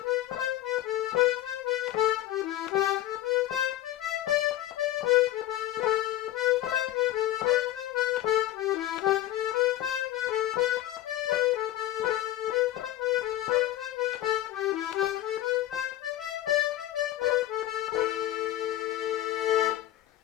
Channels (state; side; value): quieter; right; 14.1 dB